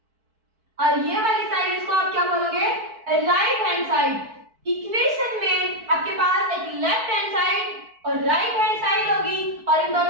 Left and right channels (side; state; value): left; late; 4.5 ms